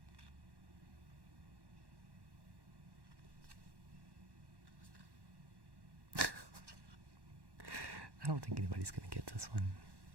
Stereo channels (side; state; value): left; late; 1.1 ms